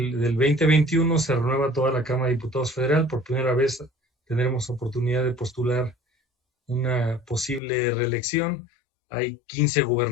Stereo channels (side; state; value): right; drops out; at 7.6 s